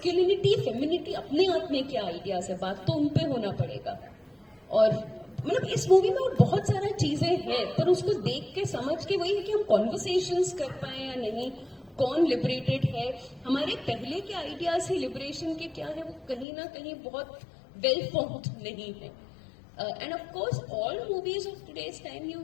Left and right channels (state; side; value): drops out; right; at 16.4 s